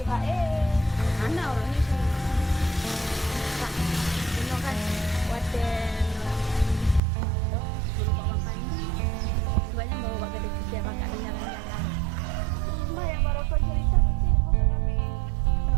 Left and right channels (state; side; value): drops out; left; at 7.0 s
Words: anak orang ni sini. Tak. Bunuh kan. Waten. Suruh bawa pandi. Banyak bawa bawa kedai kerja bakal jalan-jalan. Mbak yang baru kau cerita tu cik. Bukan kami.